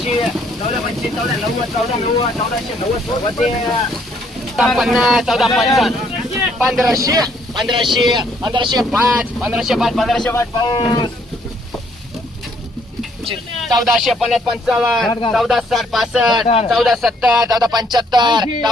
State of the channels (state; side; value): normal; both; correlation 0.67